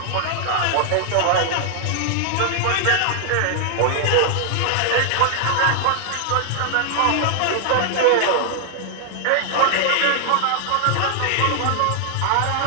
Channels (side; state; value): both; different; correlation -0.01